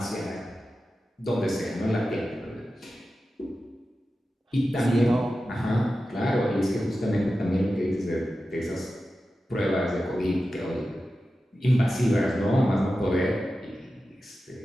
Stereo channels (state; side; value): normal; both; correlation 0.93